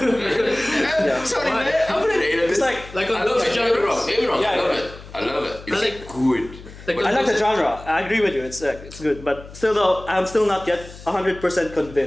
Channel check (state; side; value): noise; left; hum, 17 dB below the sound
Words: Sorry, Why? man. I played 8. It's like, Like on I love those it. Don't get me wrong. genres. Don't get me wrong. Yeah, I love yeah. it. I love it. It's like- good. Like I like the genre. I agree with you. It's good, but still though, I'm still not yet 100%